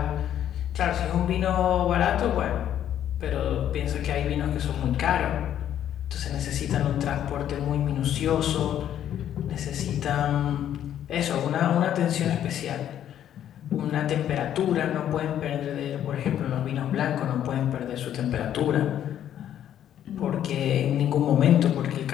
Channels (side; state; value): right; quieter; 10.6 dB